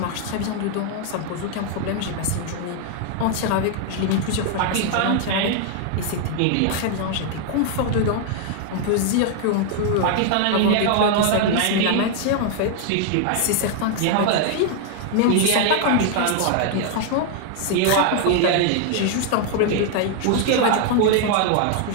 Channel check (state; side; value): different; both; correlation 0.00